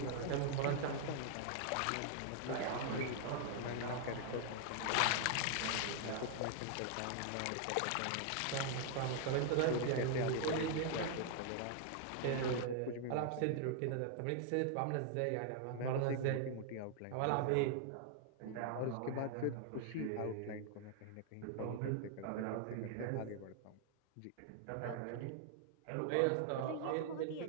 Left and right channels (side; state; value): both; different; correlation 0.00